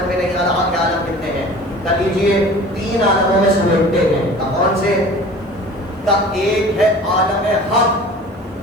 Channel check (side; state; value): both; normal; correlation 0.42